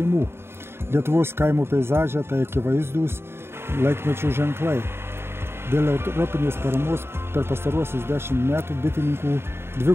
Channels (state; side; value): late; left; 0.12 ms